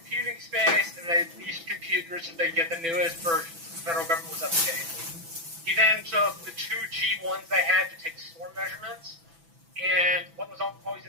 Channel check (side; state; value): left; late; 6.0 ms